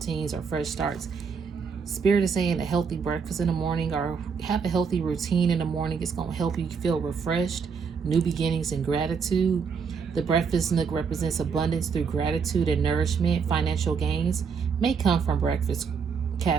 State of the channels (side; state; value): left; quieter; 5.9 dB